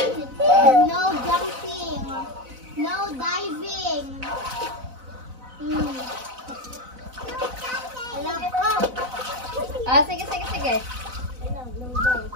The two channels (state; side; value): late; left; 4.0 ms